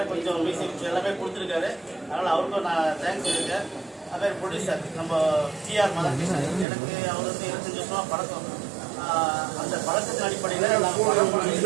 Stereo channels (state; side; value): drops out; left; at 6.7 s